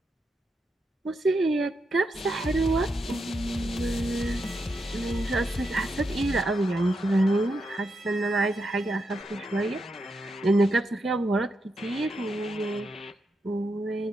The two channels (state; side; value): normal; both; correlation 0.84